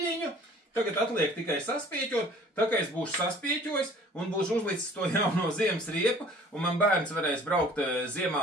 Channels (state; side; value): normal; both; correlation 0.51